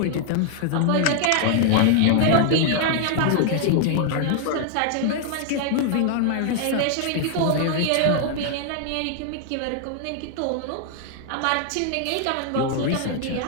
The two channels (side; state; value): both; different; correlation 0.00